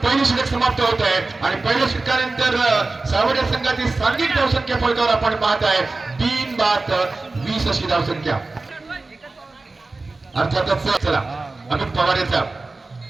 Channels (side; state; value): left; quieter; 3.4 dB